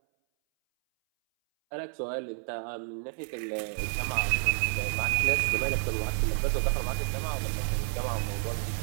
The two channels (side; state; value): left; silent; 58 dB below the other